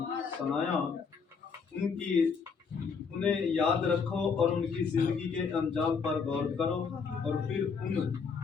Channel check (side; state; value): right; quieter; 5.6 dB